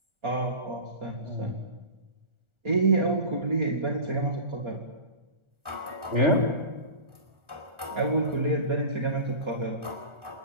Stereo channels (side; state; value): left; late; 1.4 ms